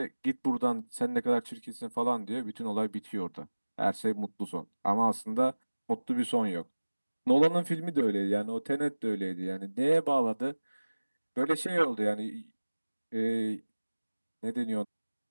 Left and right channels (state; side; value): inverted; both; correlation -1.00